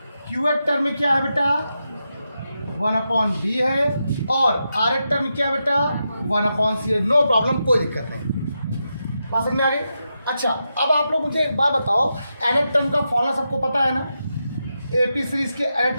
क्यूएच टर्म क्या है बेटा, 1/B है, और आरएच टर्म क्या है बेटा, 1/C है। नो प्रॉब्लम, कोई दिक्कत नहीं। बात समझ में आ गई। अच्छा, अब आप लोग मुझे एक बात बताओ, एनएच टर्म का फॉर्मूला सबको पता है ना, AP सीरीज के एनएच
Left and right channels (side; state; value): both; inverted; correlation -0.87